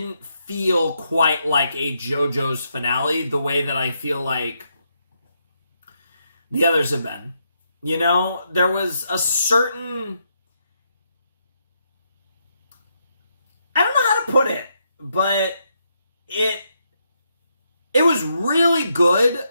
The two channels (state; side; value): inverted; both; correlation -0.79